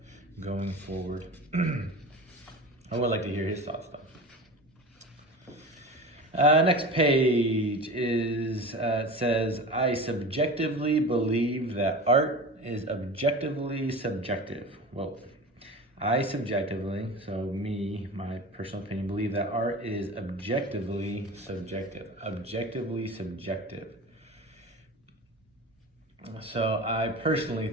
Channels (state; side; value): normal; both; correlation 0.32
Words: going forward. I would like to hear his thoughts though. Next page is, it says, I subjectively believe that art is objectively subjective. Well, I subjectively, so me, my personal opinion, believe that art is objectively subjective. Objectively subjective. So I personally